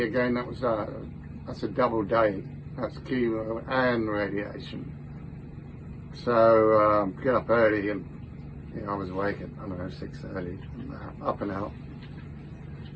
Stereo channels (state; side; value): identical; both; correlation 1.00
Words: again, that's a double day. That's chemo and radiation. So get up early, and I was awake at 6:30, up and out,